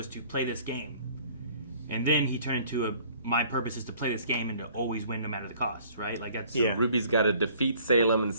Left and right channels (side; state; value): both; inverted; correlation -0.55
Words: to play this game. And then he turned into my purpose is to play this game and to always win no matter the cost, right? Like that's Ruby's got to defeat Salem and